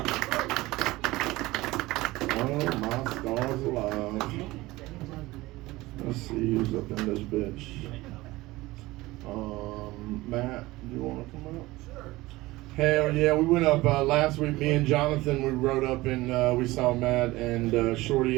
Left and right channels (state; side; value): quieter; left; 19.5 dB